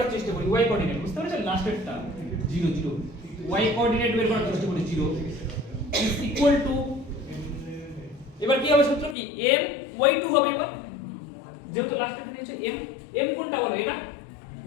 চেষ্টা করি, y কোঅর্ডিনেট বুঝতে পেরেছেন, লাস্টেরটা 0 0, y কোঅর্ডিনেট বের করার চেষ্টা করি, 0 is equal to, এবার কি হবে সূত্র কি, m y2 হবে, এবার যেহেতু লাস্টেরটা নিচে m কোনটা বলো, এটা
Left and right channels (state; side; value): drops out; right; at 9.2 s